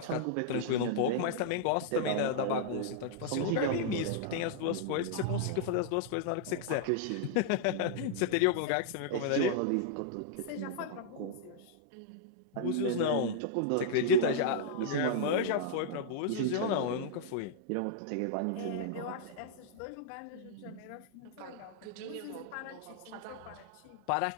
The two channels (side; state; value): both; different; correlation -0.01